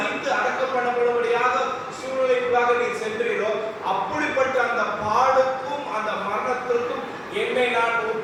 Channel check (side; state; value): both; identical; correlation 1.00